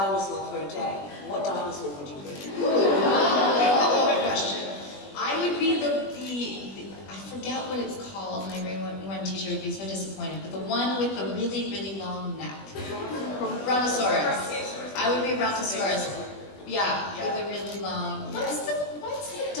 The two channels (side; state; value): right; late; 20 ms